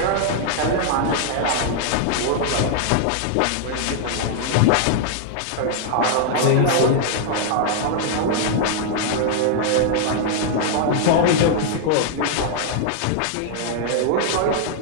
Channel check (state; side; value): different; both; correlation -0.01